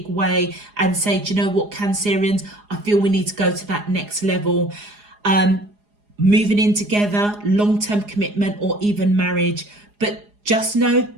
way and say, do you know what, Cancerians, I feel we need to go to that next level. Moving in together, long-term commitment, or even marriage. But just know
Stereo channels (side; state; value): left; late; 4.8 ms